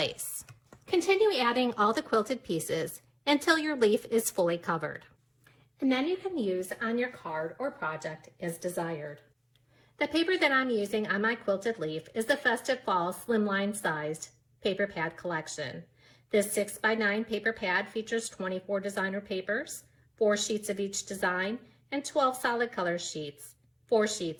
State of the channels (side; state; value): both; identical; correlation 1.00